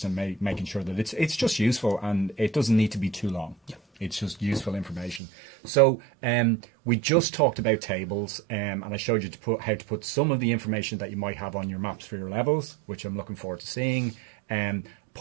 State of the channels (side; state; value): left; drops out; at 5.2 s